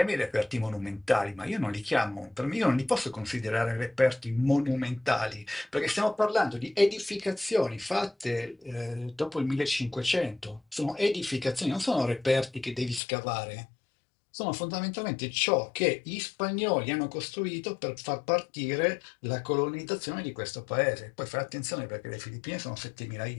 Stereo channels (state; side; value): drops out; right; at 13.0 s